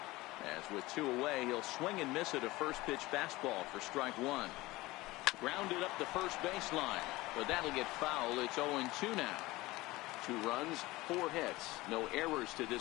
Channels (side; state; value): right; quieter; 19.8 dB